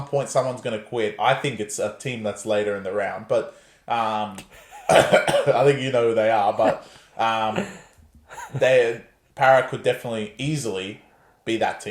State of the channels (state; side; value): identical; both; correlation 1.00